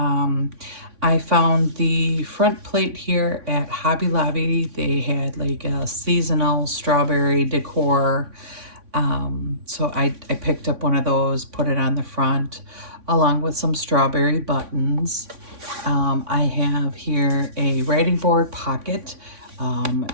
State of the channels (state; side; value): late; left; 3.6 ms